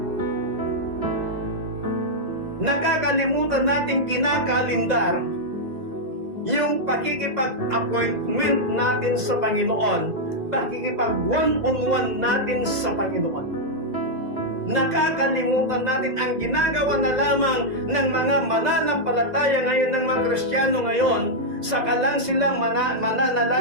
Nakakalimutan nating kinakalindar yung pakikipag-appointment natin sa Panginoon, pakikipag one-on-one natin sa Panginoon. Nakakalimutan natin ang ginagawa na lamang ng mga mananampalataya ngayon, ng mga Kristiyano ngayon, saka lang silang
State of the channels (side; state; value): left; late; 2.0 ms